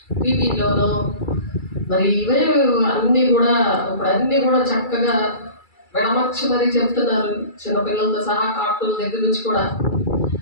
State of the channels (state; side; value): late; right; 2.3 ms